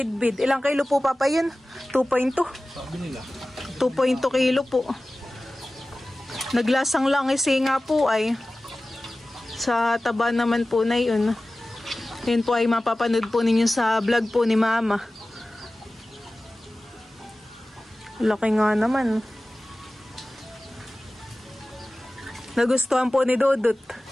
Ilang kilo po Papa yun? 2.2. Sabi nila. 2.2 kilo po. Naglasang lang kasi nga po ay sa taba naman po na yun. Yun po ay mapapanood po ninyo sa vlog po ni Mama. Laki nga naman. Nagustuhan po ni Dodot.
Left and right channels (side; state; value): both; normal; correlation 0.96